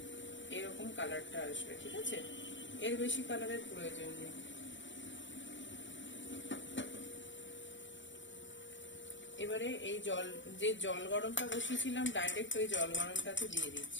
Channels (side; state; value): right; late; 0.54 ms